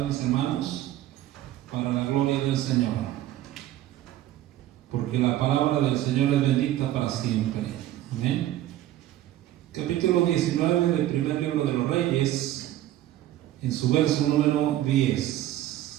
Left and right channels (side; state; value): left; quieter; 13.6 dB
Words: mis hermanos, para la gloria del Señor. Porque la palabra del Señor es bendita para siempre. Amén. Capítulo 19 del primer libro de los Reyes, en su verso número